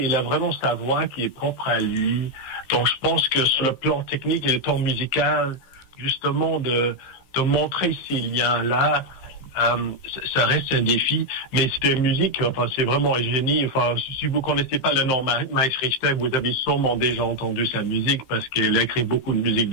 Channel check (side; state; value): right; late; 16 ms